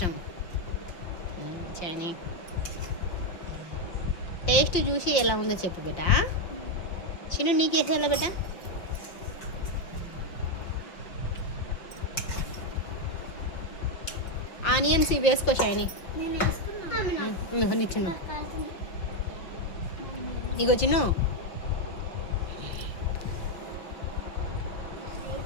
షైనీ టేస్ట్ చూసి ఎలా ఉందో చెప్పు బేట. చిన్ను నీకు వేసేయాలా బేట? ఆనియన్స్ ఇవి వేసుకో షైనీ. నీ చిన్ను ఇగో చిన్ను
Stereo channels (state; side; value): late; right; 5.7 ms